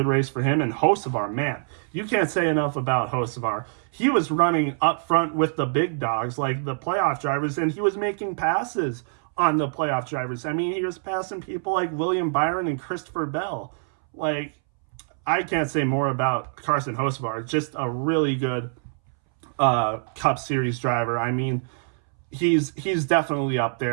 race for him. And Hocevar, man, you can't say enough about Hocevar. He was running up front with the big dogs, like the playoff drivers, and he was making passes on the playoff drivers. I mean, he was passing people like William Byron and Christopher Bell. Like, I can't say more about Carson Hocevar. Just a really good Cup Series driver. I mean, he's definitely up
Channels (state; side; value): silent; left; 62 dB below the other